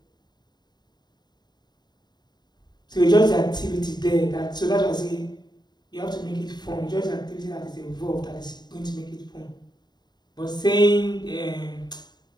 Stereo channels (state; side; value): late; right; 0.20 ms